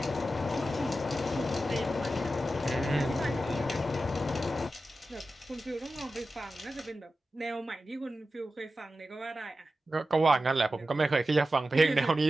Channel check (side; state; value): both; normal; correlation 0.92